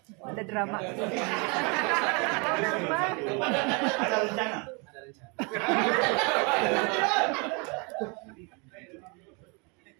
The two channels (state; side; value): quieter; left; 32.1 dB